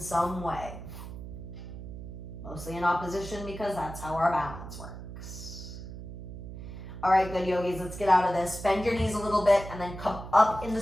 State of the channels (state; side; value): noise; right; hum, 10 dB below the sound